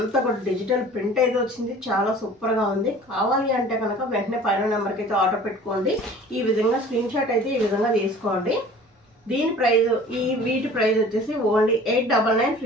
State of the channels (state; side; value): normal; both; correlation 0.46